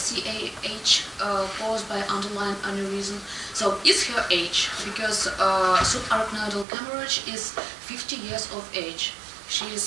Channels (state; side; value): drops out; left; at 6.7 s